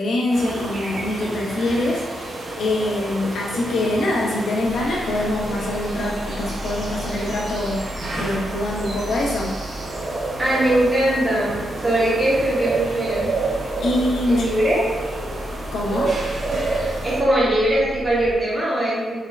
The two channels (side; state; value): both; normal; correlation 0.81